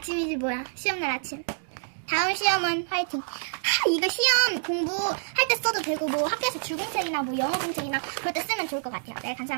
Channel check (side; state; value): left; silent; 60 dB below the other